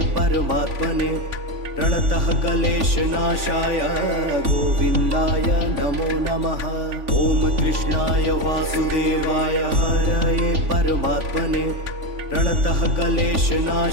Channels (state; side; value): late; left; 3.5 ms